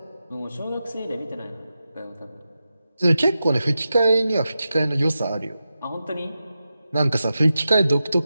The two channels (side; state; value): both; inverted; correlation -0.91